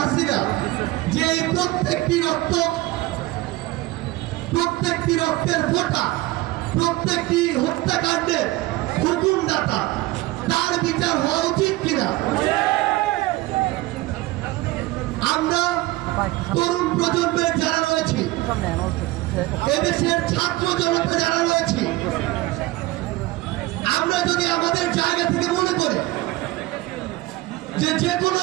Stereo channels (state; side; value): quieter; left; 18.8 dB